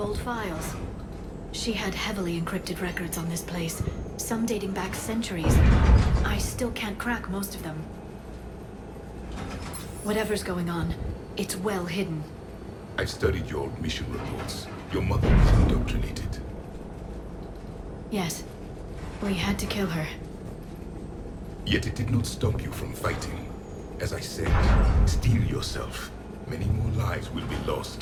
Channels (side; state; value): both; identical; correlation 1.00